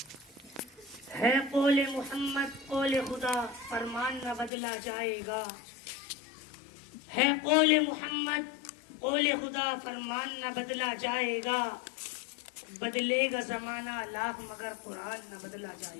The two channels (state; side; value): drops out; right; at 4.5 s